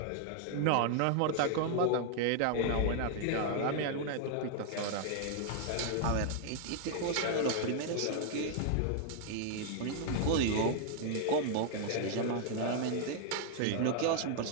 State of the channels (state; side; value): different; both; correlation 0.00